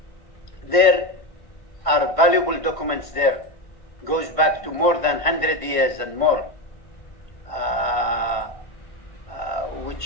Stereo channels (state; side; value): late; right; 1.5 ms